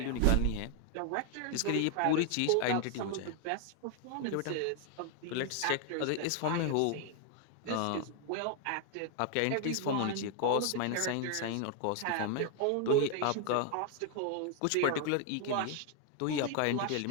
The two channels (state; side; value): different; both; correlation 0.00